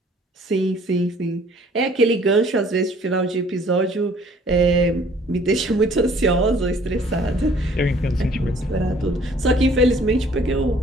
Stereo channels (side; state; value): both; normal; correlation 0.57